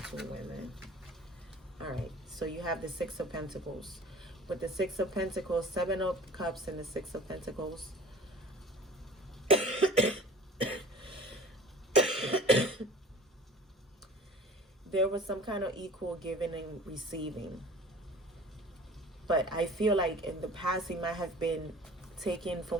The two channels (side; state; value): both; normal; correlation 0.45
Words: women. All right, so you have the Six of Pentacles. With the Six of Pentacles, Seven of Cups, and the Six of Pentacles. There was some kind of equal giving and receiving. But I feel like in the past, he might have been taken